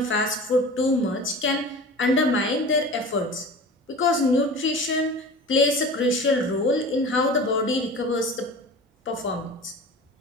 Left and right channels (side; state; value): both; normal; correlation 0.36